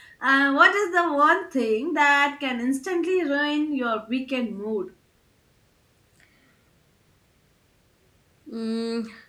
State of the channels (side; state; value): both; identical; correlation 1.00